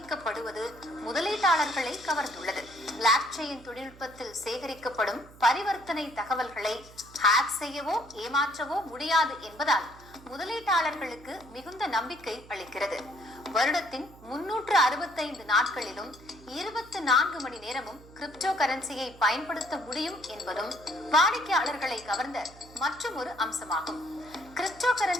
முதலீட்டாளர்களை கவர்ந்துள்ளது. பிளாக் செயின் தொழில்நுட்பத்தில் சேகரிக்கப்படும் பரிவர்த்தனை தகவல்களை ஹேக் செய்யவோ ஏமாற்றவோ முடியாது என்பதால் முதலீட்டாளர்களுக்கு மிகுந்த நம்பிக்கை அளிக்கிறது. வருடத்தின் 365 நாட்களிலும் 24 மணி நேரமும் கிரிப்டோ கரன்சியை பயன்படுத்த முடியும் என்பதும் வாடிக்கையாளர்களை கவர்ந்த மற்றும் ஒரு அம்சமாகும். கிரிப்டோ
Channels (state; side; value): noise; right; hum, 21 dB below the sound